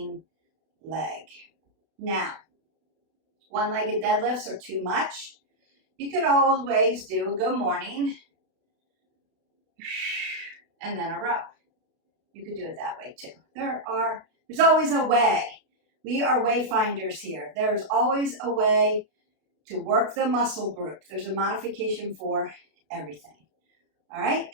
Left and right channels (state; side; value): late; left; 32 ms